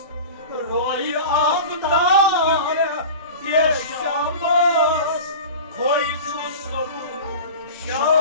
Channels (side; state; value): both; inverted; correlation -0.34